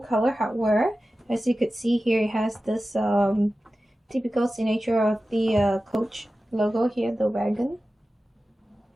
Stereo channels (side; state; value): both; normal; correlation 0.95